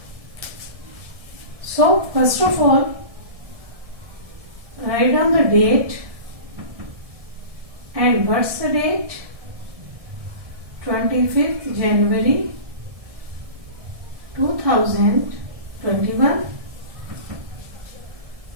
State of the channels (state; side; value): late; left; 1.7 ms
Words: So, first of all, write down the date. And what's the date? 25th January 2021.